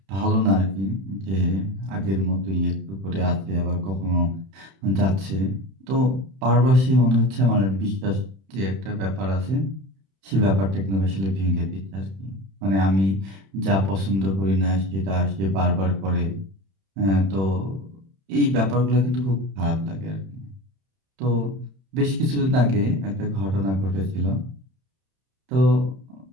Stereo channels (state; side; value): late; left; 31 ms